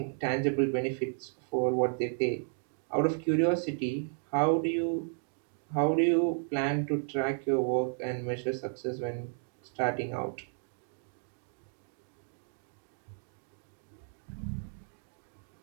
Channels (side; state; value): left; silent; 56 dB below the other